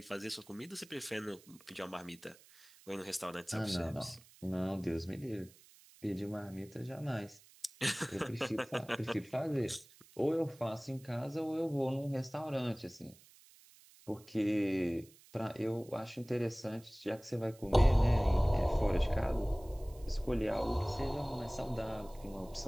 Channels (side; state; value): right; noise; hiss, 24 dB below the sound